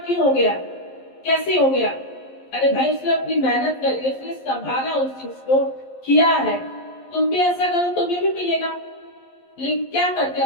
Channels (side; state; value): right; late; 11 ms